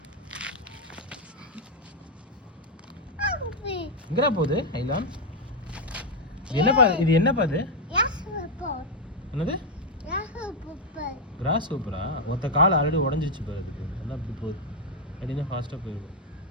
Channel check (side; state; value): both; normal; correlation 0.01